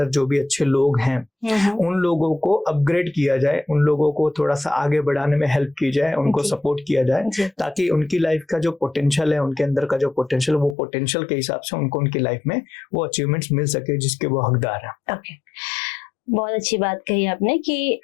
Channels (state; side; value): drops out; right; at 10.8 s